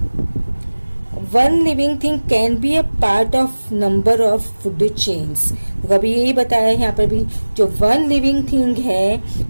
One living thing can be a part of number of food chains. तो अभी यही बताया है यहाँ पर भी, जो वन लिविंग थिंग है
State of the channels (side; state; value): both; inverted; correlation -1.00